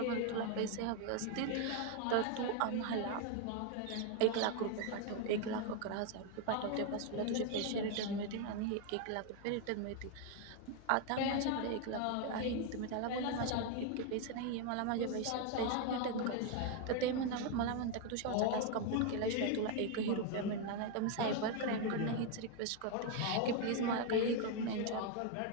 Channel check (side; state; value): both; different; correlation 0.01